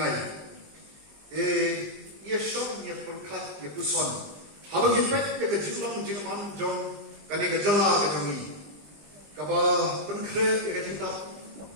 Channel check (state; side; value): late; left; 20 ms